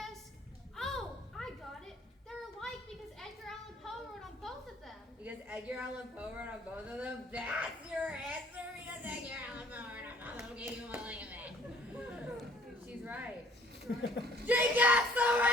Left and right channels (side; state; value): both; normal; correlation 0.57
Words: Oh, I got it. They're alike because Edgar Allan Poe wrote on both of them. Because Edgar Allan Poe wrote on both of them? That's your answer because Edgar Allan Poe wrote on both of them. Gave you a look at that. She's right. She gets the